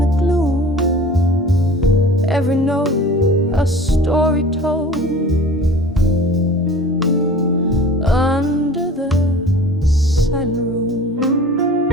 the gloom. Every note a story told under the silent room.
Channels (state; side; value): normal; both; correlation 0.42